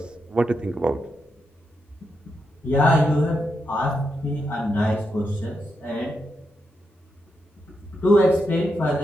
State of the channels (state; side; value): normal; both; correlation 0.84